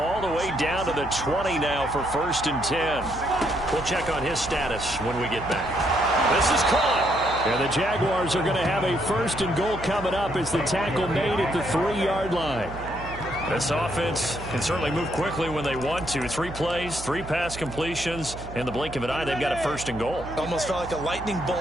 the way down to the 20 now for 1st and 10. We'll check on his status when we get back. This is caught. And the Jaguars are going to have a 1st and goal coming up as the tackle made at the 3-yard line. This offense can certainly move quickly when they want to. 3 plays, 3 pass completions. In the blink of an eye, they've got a 1st and goal. Almost felt like a lightning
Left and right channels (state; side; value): noise; right; hum, 12 dB below the sound